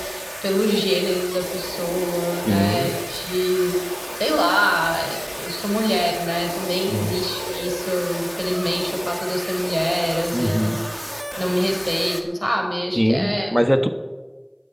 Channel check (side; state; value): both; identical; correlation 1.00